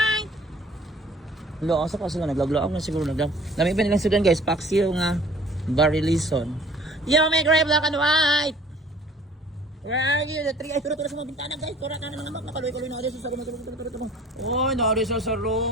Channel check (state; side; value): normal; both; correlation 0.52